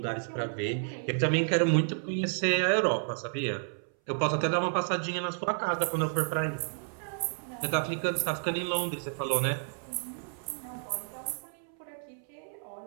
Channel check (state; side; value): silent; left; 57 dB below the other